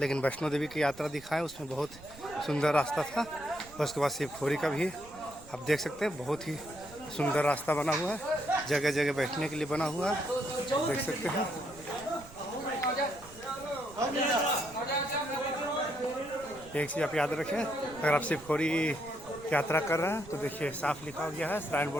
वैष्णो देवी की यात्रा दिखाएं उसमें बहुत सुंदर रास्ता था। उसके बाद शिवखोरी का भी आप देख सकते हैं बहुत ही सुंदर रास्ता बना हुआ है, जगह जगह बैठने के लिए बना हुआ है, देख सकते हैं। एक चीज़ आप याद रखें, अगर आप शिवखोरी यात्रा कर रहे हैं तो देखिए साफ लिखा गया है श्राइन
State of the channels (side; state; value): right; noise; rumble, 20 dB below the sound